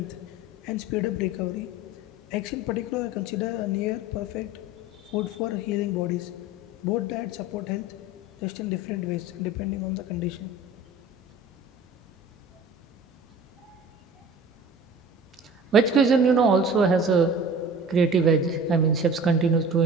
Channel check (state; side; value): normal; both; correlation 0.41